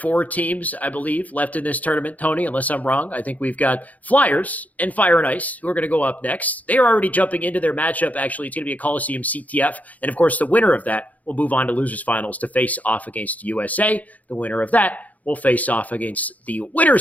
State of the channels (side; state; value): right; late; 0.075 ms